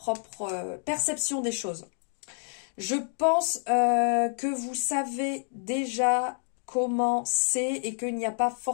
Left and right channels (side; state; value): right; silent; 55 dB below the other